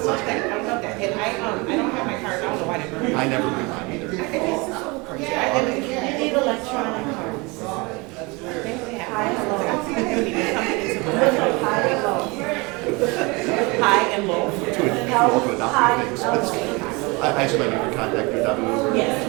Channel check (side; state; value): left; quieter; 26.4 dB